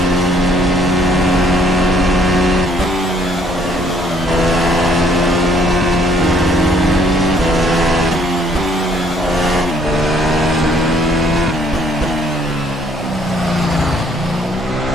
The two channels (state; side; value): normal; both; correlation 0.63